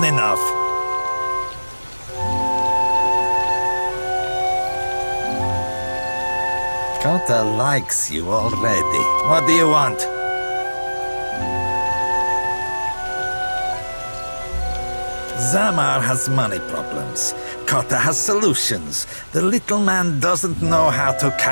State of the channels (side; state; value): both; inverted; correlation -1.00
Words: enough. Cotter likes you already. What do you want? Zamar has money problems. Cotter has solutions. The little man doesn't know how to